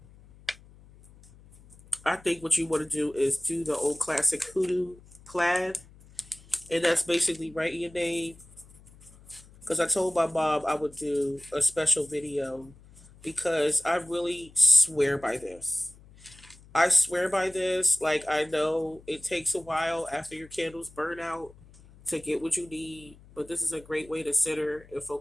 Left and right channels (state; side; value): noise; left; hum, 23 dB below the sound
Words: I think what you want to do is do the old classic hoodoo plaid, and that's basically writing your name. Because I told my mom I would do a special video because I really swear by this. I swear by this. Like, I know it takes a while after your candles burn out to get what you need, but this is a great way to center and